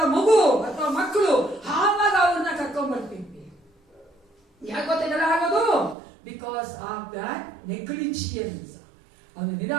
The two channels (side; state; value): left; drops out; at 6.0 s